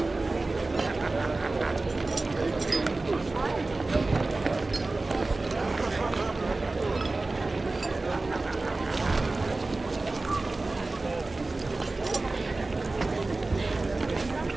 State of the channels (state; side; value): quieter; left; 3.3 dB